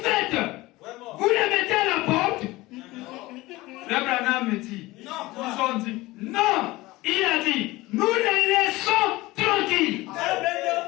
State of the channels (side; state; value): right; quieter; 19.7 dB